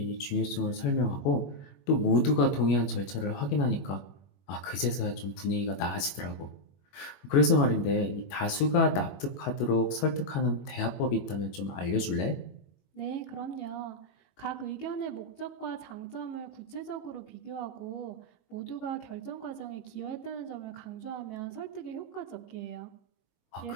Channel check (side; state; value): right; late; 21 ms